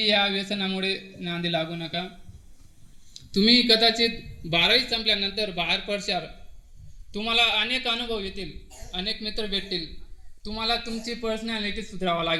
या व्यसनामुळे नांदी लागू नका. तुम्ही कदाचित 12वी संपल्यानंतर बाहेर पडशाल, तुम्हाला अनेक अनुभव येतील, अनेक मित्र भेटतील. तुम्हाला तुमची पर्सनॅलिटी सुधारावं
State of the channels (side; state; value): both; identical; correlation 1.00